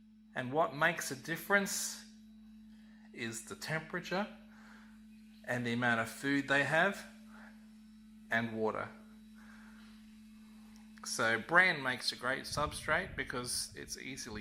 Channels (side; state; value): both; identical; correlation 1.00